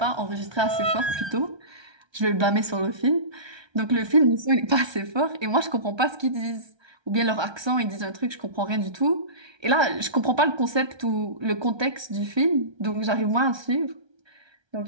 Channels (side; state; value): left; late; 1.3 ms